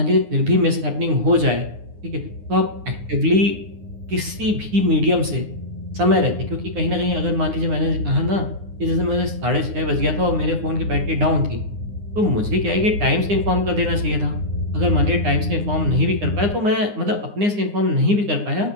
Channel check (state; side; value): late; left; 9.7 ms